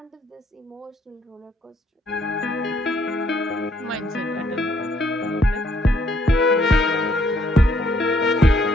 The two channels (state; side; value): normal; both; correlation 0.68